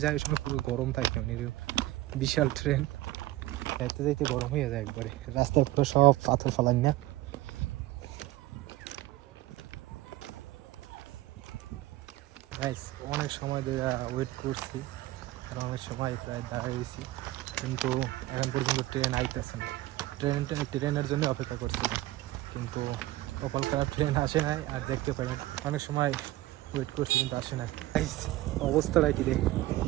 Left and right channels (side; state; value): left; quieter; 17.0 dB